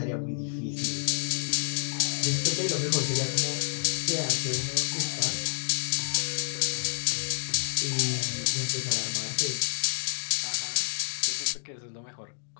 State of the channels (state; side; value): silent; right; digital silence